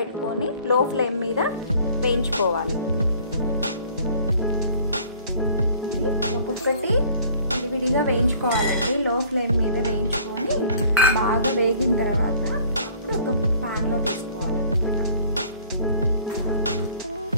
లో ఫ్లేమ్ మీద వేయించుకోవాలి. ఇవి ఒక్కొక్కటి విడివిడిగా వేయించుకోవాలండి. లో ఫ్లేమ్ మీద వేయించుకొని బాగా వేగిన తర్వాత అప్పుడు ఒక ప్యాన్లో తీసుకోవాలన్నమాట.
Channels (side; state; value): both; inverted; correlation -0.53